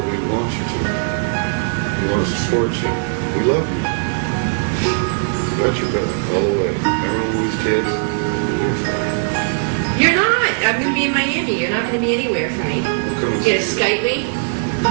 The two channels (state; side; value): silent; left; 62 dB below the other